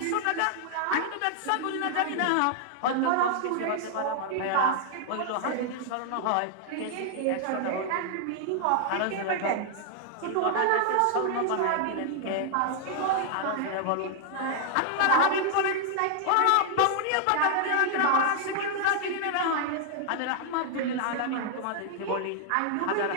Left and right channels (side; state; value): both; different; correlation 0.00